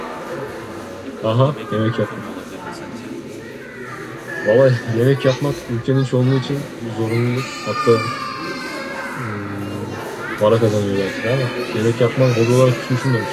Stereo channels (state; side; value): identical; both; correlation 1.00